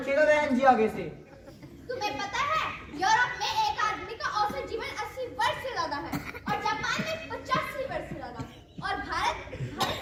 बहन जी आगे से। तुम्हें पता है यूरोप में एक आदमी का औसत जीवन 80 वर्ष से ज्यादा है और जापान में 85 वर्ष से ज्यादा, और भारत कहाँ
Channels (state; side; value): identical; both; correlation 1.00